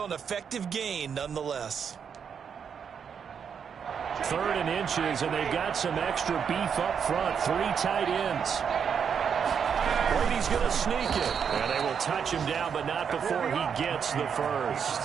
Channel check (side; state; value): left; quieter; 7.1 dB